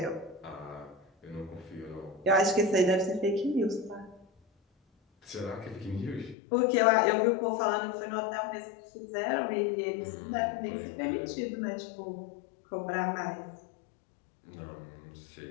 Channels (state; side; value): drops out; right; at 6.4 s